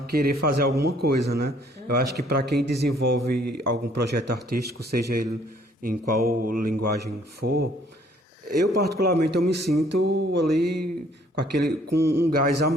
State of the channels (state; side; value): normal; both; correlation 0.61